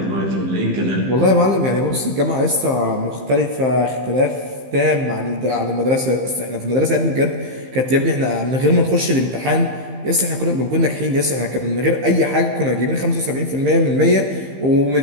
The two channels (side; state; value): left; late; 15 ms